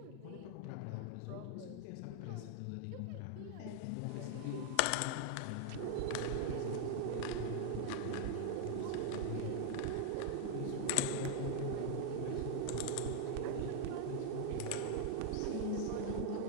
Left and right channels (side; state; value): both; different; correlation 0.00